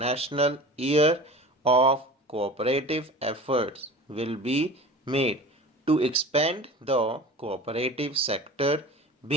Year of Cooperative efforts will be made to expand the cooperative sector,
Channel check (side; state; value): both; normal; correlation 0.37